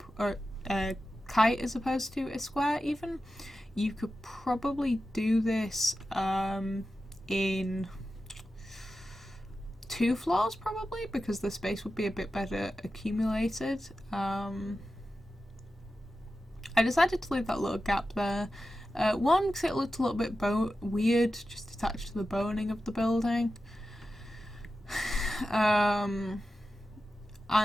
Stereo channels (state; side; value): normal; both; correlation 0.92